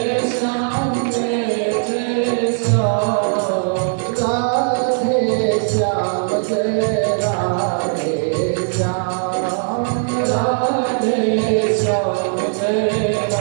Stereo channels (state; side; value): silent; left; digital silence